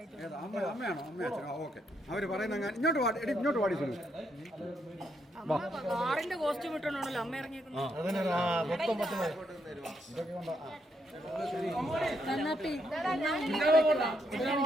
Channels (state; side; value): normal; both; correlation 0.77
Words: അമ്മയാണോ? ഓക്കെ. അവര് പറയുന്ന ഇങ്ങോട്ട് പാടി കാറിന്റെ കോസ്റ്റ്യൂം ഇട്ടോണ്ടാണല്ലോ അമ്മ ഇറങ്ങിയേക്കുന്നത്.